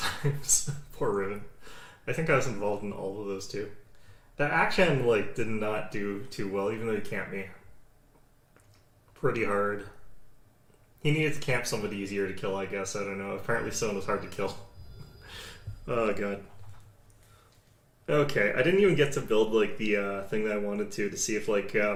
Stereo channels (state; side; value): identical; both; correlation 1.00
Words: Poor Riven. I think I was involved in all of those too. That action, like, did not do too well, even though he camped me. Pretty hard. He needed to camp somebody easier to kill, I guess. I don't know. Apparently Son was hard to kill. Oh, God. Okay, I didn't even get to build, like, the thing that I wanted to see if, like,